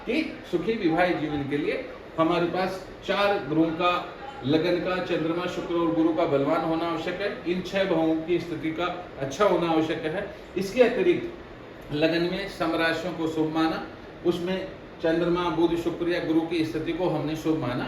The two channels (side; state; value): both; identical; correlation 1.00